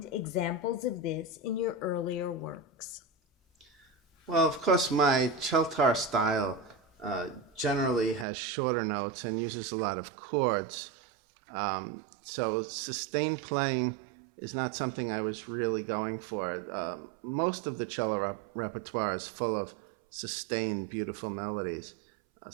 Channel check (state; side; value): drops out; left; at 8.2 s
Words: examples of this in your earlier works? Well, of course, my celtar style generally has shorter notes and uses a lot of chords. So sustained playing is not something I was really going for. Most of the cello repertoire is full of sustained, beautiful melodies.